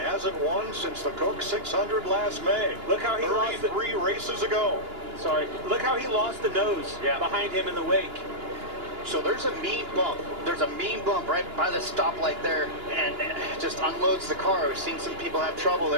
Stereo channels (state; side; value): late; left; 2.9 ms